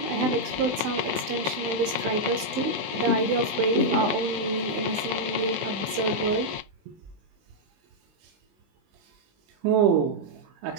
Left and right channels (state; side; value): late; left; 20 ms